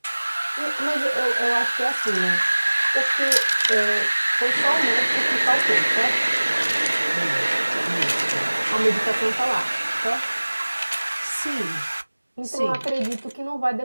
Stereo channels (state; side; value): inverted; both; correlation -1.00